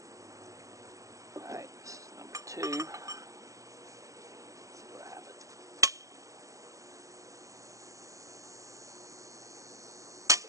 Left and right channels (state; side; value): late; left; 0.16 ms